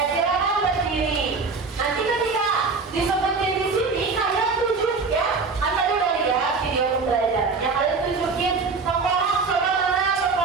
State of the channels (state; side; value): quieter; left; 4.4 dB